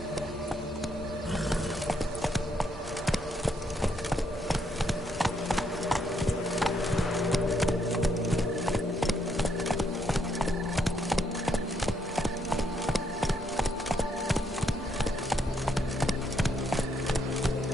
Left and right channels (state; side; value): normal; both; correlation 0.75